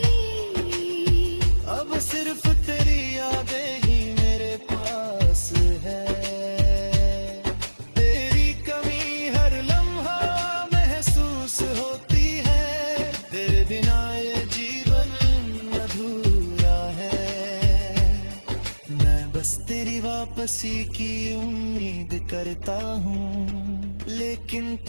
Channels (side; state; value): both; inverted; correlation -1.00